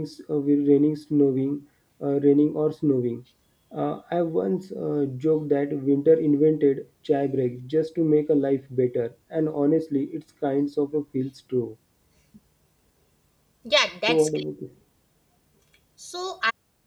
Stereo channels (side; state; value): both; identical; correlation 1.00